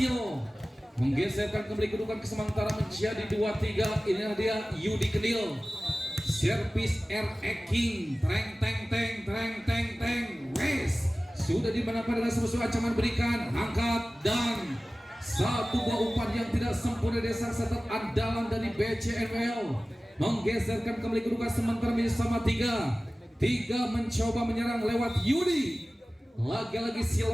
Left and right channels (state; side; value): normal; both; correlation 0.97